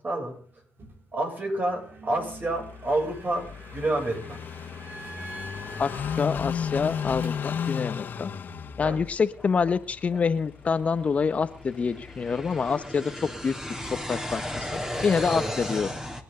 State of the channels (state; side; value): quieter; right; 3.6 dB